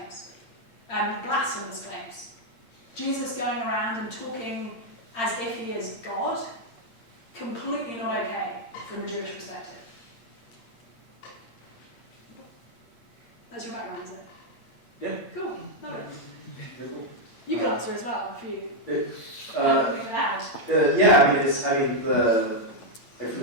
blasphemous claims. Jesus going around and talking as if he is God, completely not okay from a Jewish perspective. That's your background, is it? Yeah. Cool, love it. Very cool. You can answer as well if you Uh, anything to add. Yeah, for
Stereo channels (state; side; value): late; right; 8.7 ms